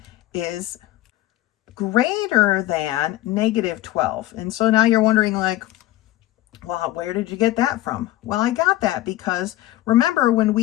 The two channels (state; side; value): quieter; right; 15.8 dB